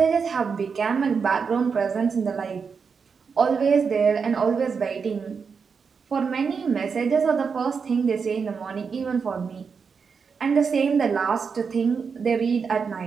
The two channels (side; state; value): left; quieter; 5.7 dB